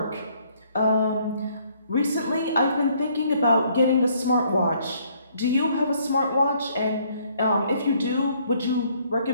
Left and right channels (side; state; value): both; inverted; correlation -0.65